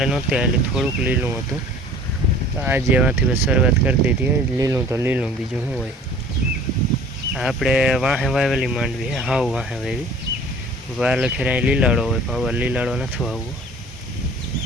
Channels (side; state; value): both; normal; correlation 0.48